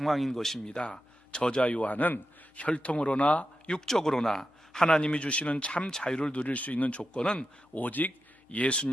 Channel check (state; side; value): normal; both; correlation 0.90